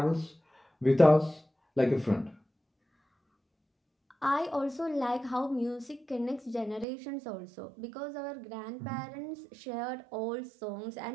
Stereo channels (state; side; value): drops out; left; at 6.9 s